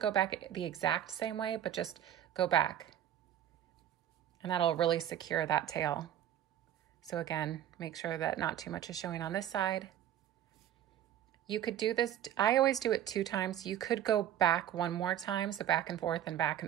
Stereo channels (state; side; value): quieter; left; 11.1 dB